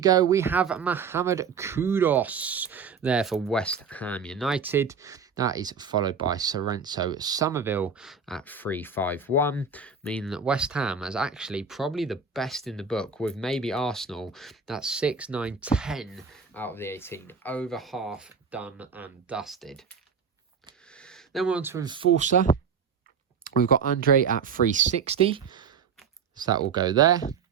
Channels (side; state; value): left; quieter; 6.0 dB